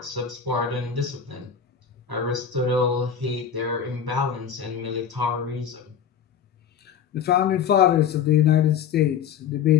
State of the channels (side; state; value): right; quieter; 7.7 dB